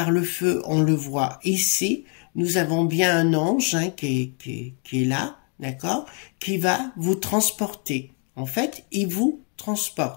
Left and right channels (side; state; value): right; quieter; 40.0 dB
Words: le feu, on le voit ici. Nous avons bien un ange qui est là, d'accord, qui va vous transporter. En fait, il vous